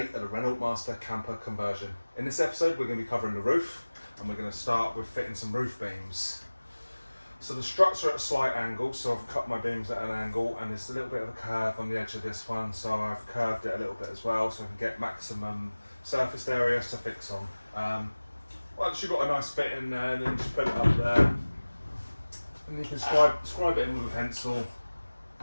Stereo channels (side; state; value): both; inverted; correlation -1.00